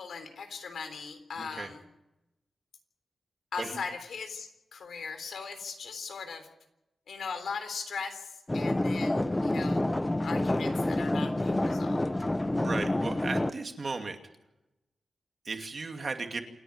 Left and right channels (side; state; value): both; normal; correlation 0.96